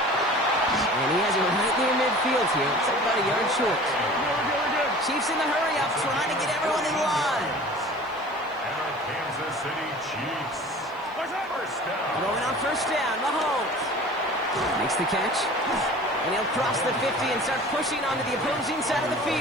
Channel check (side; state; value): right; noise; hiss, 29 dB below the sound